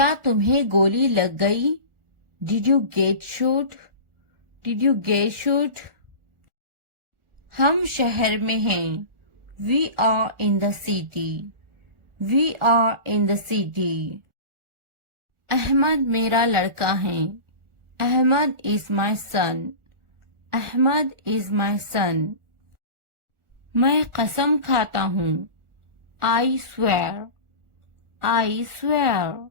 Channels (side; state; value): left; late; 1.4 ms